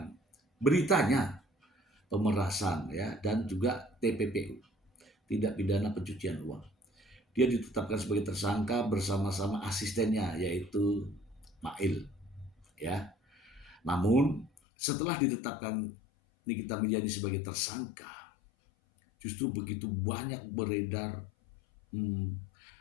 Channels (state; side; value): drops out; right; at 14.5 s